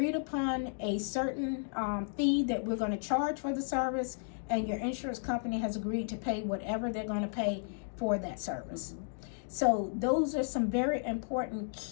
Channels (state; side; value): silent; right; digital silence